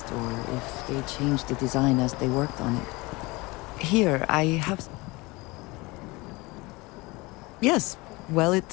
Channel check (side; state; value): right; quieter; 23.6 dB